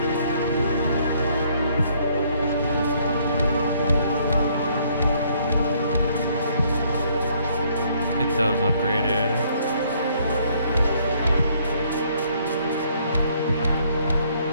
Get those upgraded.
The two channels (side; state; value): both; inverted; correlation -0.66